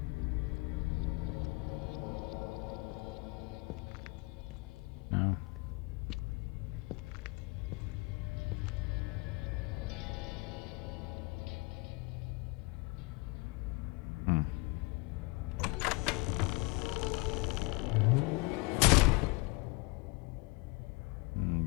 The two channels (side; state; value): right; quieter; 26.3 dB